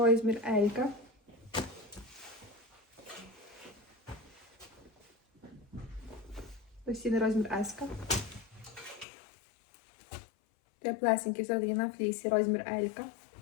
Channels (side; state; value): right; drops out; at 9.1 s